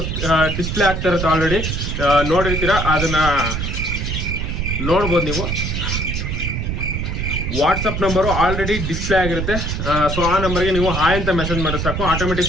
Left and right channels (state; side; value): noise; right; rumble, 2 dB below the sound